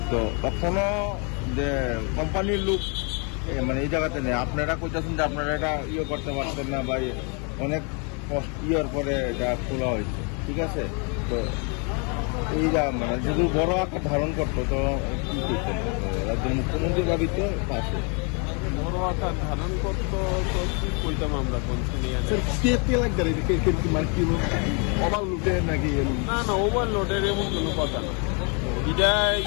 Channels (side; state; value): right; quieter; 35.4 dB